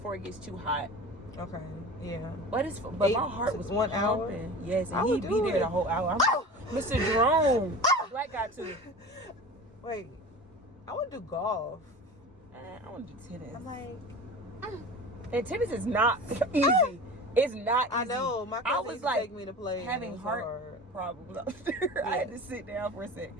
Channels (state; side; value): normal; both; correlation 0.35